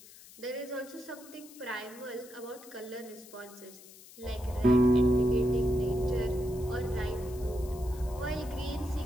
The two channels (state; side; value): noise; left; hiss, 20 dB below the sound